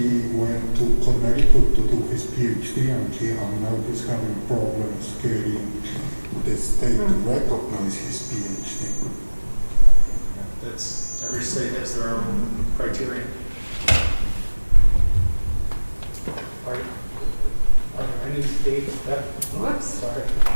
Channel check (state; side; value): inverted; both; correlation -1.00